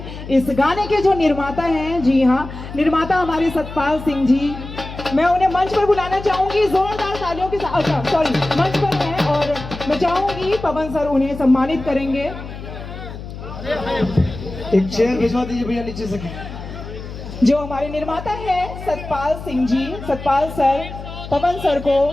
इस गाने के जो निर्माता हैं, जी हाँ, निर्माता हमारे सतपाल सिंह जी, मैं उन्हें मंच पर बुलाना चाहूंगी जोरदार तालियों के साथ। अच्छा सॉरी, मंच पर हैं और मैं चाहूंगी पवन सर उन्हें सम्मानित करेंगे। एक चेयर भिजवा दीजिए भैया नीचे से। जो हमारे निर्माता हैं सतपाल सिंह जी, सतपाल सर पवन सर को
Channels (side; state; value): left; noise; hum, 11 dB below the sound